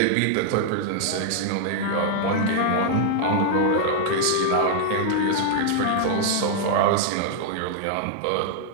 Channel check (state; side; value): different; both; correlation 0.00